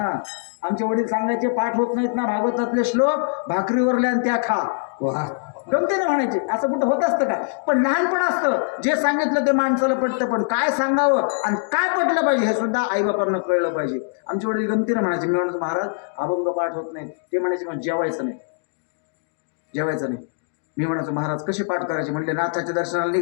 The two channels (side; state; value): right; silent; digital silence